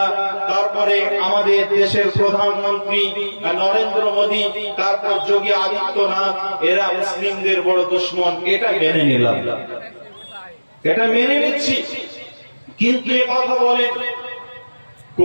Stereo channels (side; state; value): both; inverted; correlation -1.00